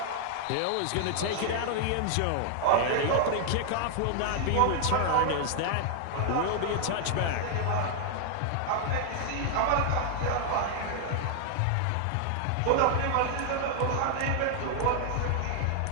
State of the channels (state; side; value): different; both; correlation 0.00